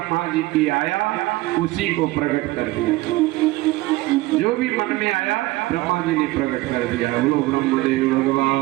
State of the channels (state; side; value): quieter; left; 19.3 dB